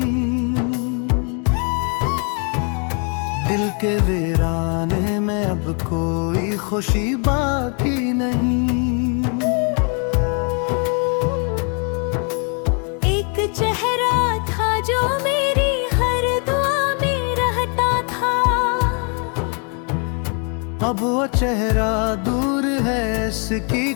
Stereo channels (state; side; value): quieter; right; 38.3 dB